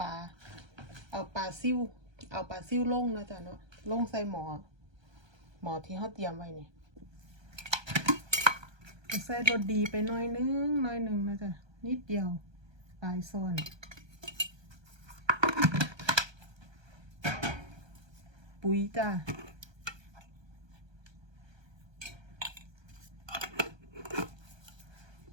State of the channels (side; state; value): left; late; 1.3 ms